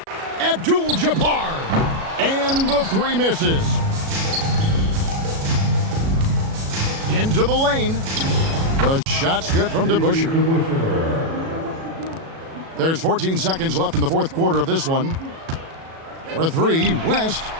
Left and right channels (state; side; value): late; left; 37 ms